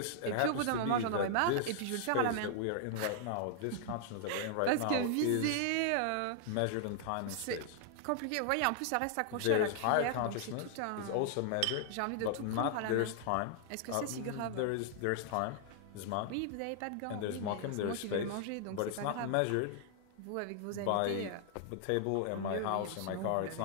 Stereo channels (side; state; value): both; different; correlation 0.00